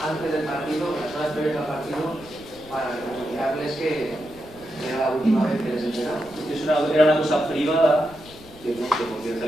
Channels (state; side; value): noise; left; rumble, 22 dB below the sound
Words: del partido, las horas previas al partido, para comunicarles que era la última vez que les esperaba. Era una cosa privada, que no sé por qué ha